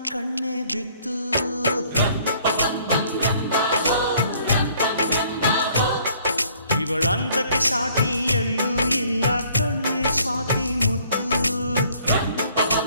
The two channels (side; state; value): both; inverted; correlation -0.60